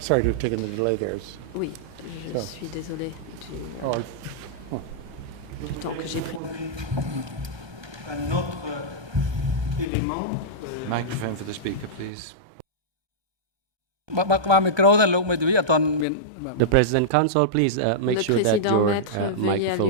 sorry to have taken the delay there. Oui, je So. suis désolée Oh, du temps que j'ai pris. Un autre élément. Microphone for the speaker, please. បើក្បាលមីក្រូទៅលោកមេធាវីអត់ទាន់មាន The President, Counsel, please make Le sure that Président, your Maître, veuillez microphone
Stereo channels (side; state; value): left; late; 1.2 ms